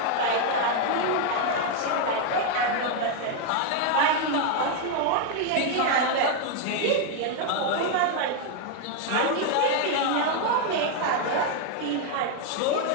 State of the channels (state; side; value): different; both; correlation 0.01